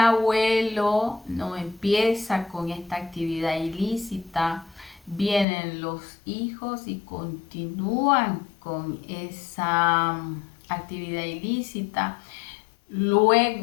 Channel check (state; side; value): drops out; right; at 5.5 s